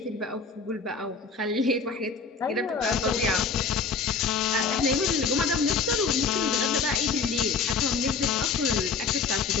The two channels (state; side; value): quieter; right; 5.0 dB